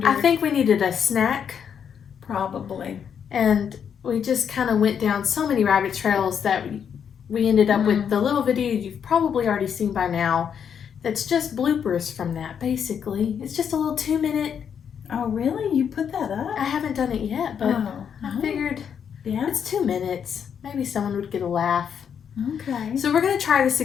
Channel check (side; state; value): right; quieter; 7.8 dB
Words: I think we needed a snack. Probably. And we just kind of went down so many rabbit trails that we ended up with the little video you've probably already seen by now. That's just bloopers from that, basically. It's just a little 2-minute. Oh, really? You put that up? I haven't done it yet, but I figured it's 2 minutes. Maybe someone would get a laugh. Okay. So we're going to try this